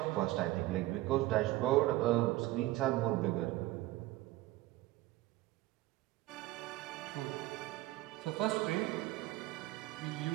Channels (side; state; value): left; quieter; 17.2 dB